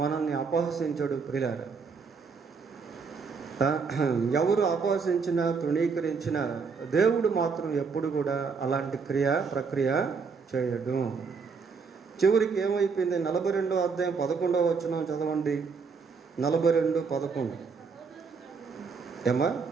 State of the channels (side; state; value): left; quieter; 5.2 dB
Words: మనల్ని అపహసించడు ప్రియులారా. ఎవరు అపహసించినా తృణీకరించినా దేవుడు మాత్రం ఎప్పుడు కూడా అలాంటి ప్రక్రియ చేయడు. చివరికి ఏమైపోయింది? 42వ అధ్యాయం 11వ వచనం చదవండి. 42:11 ఏమా?